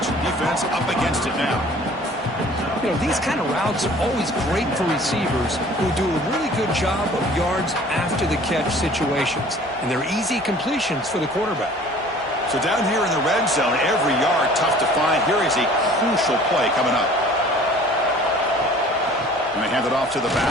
Defense up against it now. You know, these kind of routes are always great for receivers who do a really good job of yards after the catch situations. And they're easy completions for the quarterback. So down here in the red zone, every yard tough to find. Here is a crucial play coming up. And they hand it off to the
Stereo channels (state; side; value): noise; left; hum, 29 dB below the sound